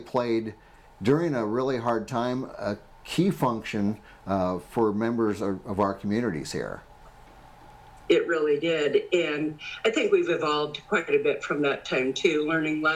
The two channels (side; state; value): both; identical; correlation 1.00